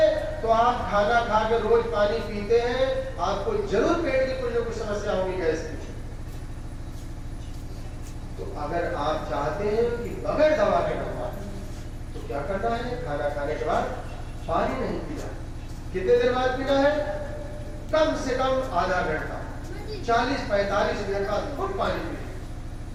तो आप खाना खा के रोज पानी पीते हैं, आपको जरूर पेट की कुछ ना कुछ समस्या होगी, गैस की। तो अगर आप चाहते हैं कि बगैर दवा के नंबर, तो क्या करना है? खाना खाने के बाद पानी नहीं पीना। कितने देर बाद पीना है? कम से कम आधा घंटा, 40-45 मिनट बाद खूब पानी पीजिए,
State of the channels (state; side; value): identical; both; correlation 1.00